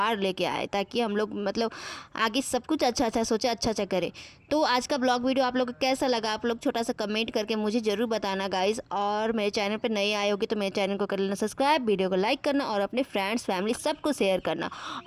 लेके आए, ताकि हम लोग मतलब आगे सब कुछ अच्छा अच्छा सोचे, अच्छा अच्छा करें। तो आज का ब्लॉग वीडियो आप लोग को कैसा लगा, आप लोग छोटा सा कमेंट करके मुझे ज़रूर बताना गाइज। और मेरे चैनल पर नए आए होगे तो मेरे चैनल को कर लेना सब्सक्राइब, वीडियो को लाइक करना और अपने फ्रेंड्स फैमिली सबको शेयर करना।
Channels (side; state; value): both; identical; correlation 1.00